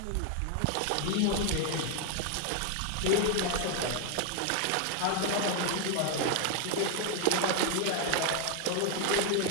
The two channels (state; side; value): different; both; correlation 0.00